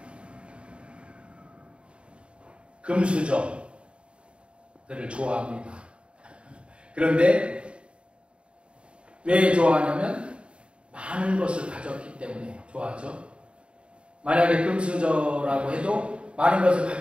금수저들을 좋아합니다. 그런데 왜 좋아하냐면 많은 것을 가졌기 때문에 좋아하죠. 만약에 금수저라고 해도 많은 것을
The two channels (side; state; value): left; late; 0.056 ms